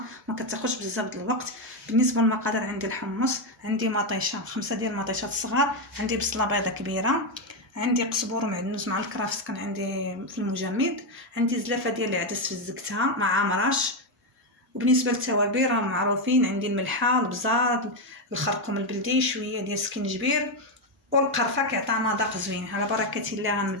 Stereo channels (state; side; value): normal; both; correlation 0.06